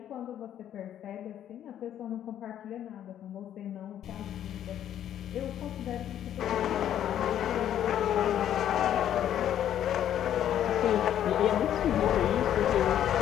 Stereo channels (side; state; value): right; quieter; 10.7 dB